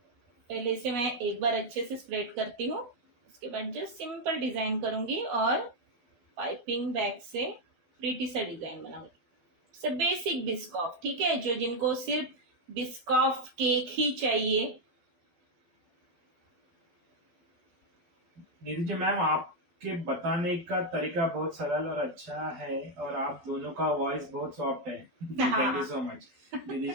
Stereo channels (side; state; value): left; late; 12 ms